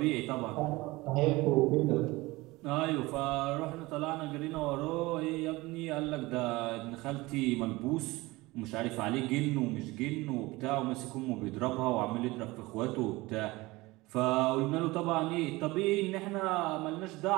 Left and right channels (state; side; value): quieter; left; 21.2 dB